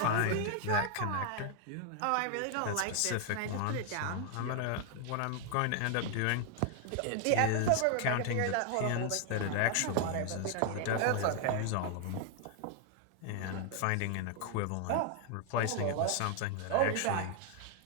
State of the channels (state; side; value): different; both; correlation 0.00